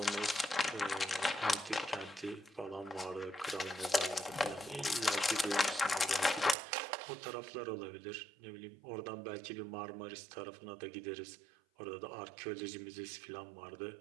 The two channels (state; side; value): drops out; left; at 6.6 s